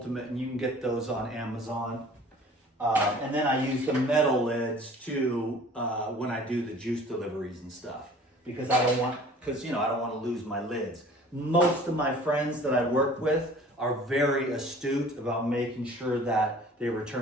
and you can get those on Amazon. And then I use the metal lids too, when I do the juice deliveries and stuff, because I don't want to lose my lids. Most of my friends that I work with are very astute about making sure that they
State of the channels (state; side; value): normal; both; correlation 0.48